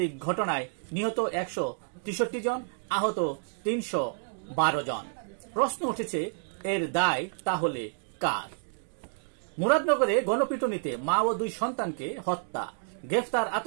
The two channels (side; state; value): left; silent; digital silence